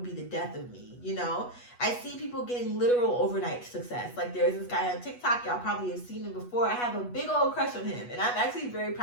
be the death of me, you know? I see people getting literal overnight success. Like there's this guy on TikTok, y'all probably have seen him before. I have a big old crush on him, and I'm actually very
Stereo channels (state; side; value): late; right; 8.2 ms